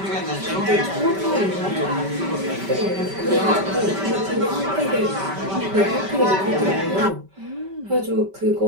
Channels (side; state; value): left; late; 5.2 ms